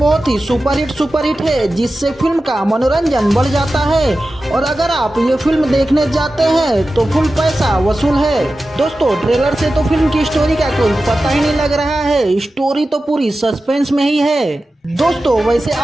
ही सुपरहिट है, जिससे फिल्म का मनोरंजन बढ़ जाता है और अगर आप ये फिल्म देखने जाते हैं तो फुल पैसा वसूल है। दोस्तों, ट्रेलर से तो फिल्म की स्टोरी का कोई पता ही नहीं लग रहा है, स्टोरी तो पूरी सस्पेंस में ही है। दोस्तों, वैसे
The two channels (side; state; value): both; normal; correlation 0.94